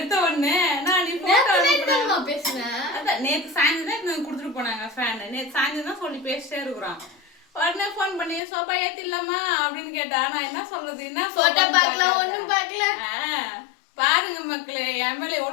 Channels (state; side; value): drops out; right; at 8.4 s